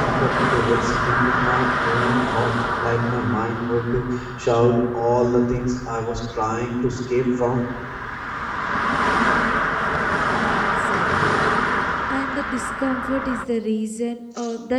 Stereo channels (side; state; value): both; identical; correlation 1.00